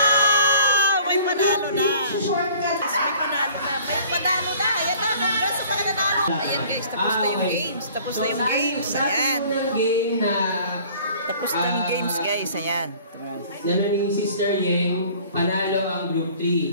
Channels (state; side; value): inverted; both; correlation -0.51